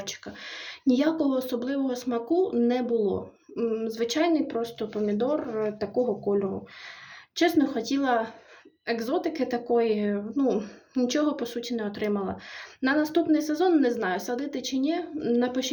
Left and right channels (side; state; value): both; identical; correlation 1.00